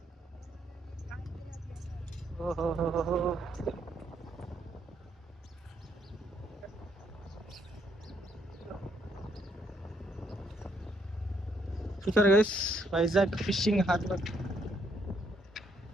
ఓహో, చూసారు guys, Vizag fishing harbour.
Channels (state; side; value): normal; both; correlation 0.73